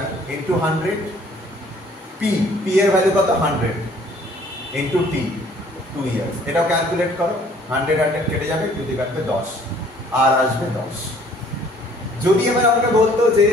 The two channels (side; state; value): both; normal; correlation 0.57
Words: × 100, P এর ভ্যালু কত? 100, × T 2 ইয়ার্স। এটাও ক্যালকুলেট করো, 100 কেটে যাবে, যদি কাটবে 10, আর আসবে 10। যদি এবার আমাকে বলতো যে